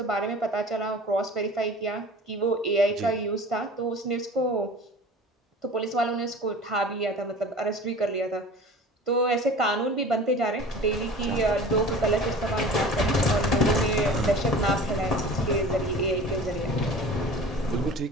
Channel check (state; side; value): normal; both; correlation 0.40